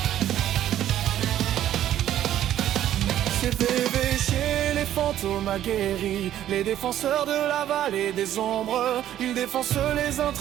C'est VVG, les fantômes aguerris, les défenseurs de la vallée des ombres. Ils défoncent les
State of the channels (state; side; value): quieter; left; 11.9 dB